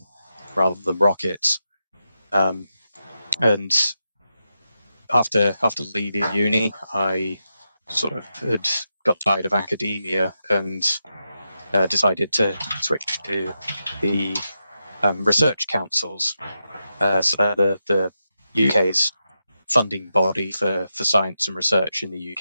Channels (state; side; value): inverted; both; correlation -0.87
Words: rather than rockets. And after leaving uni, I sort of had got tired of academia and decided to switch to the research councils. So they're the UK's funding body for science and research in the